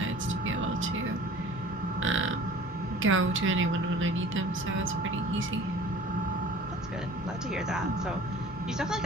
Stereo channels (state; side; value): normal; both; correlation 0.46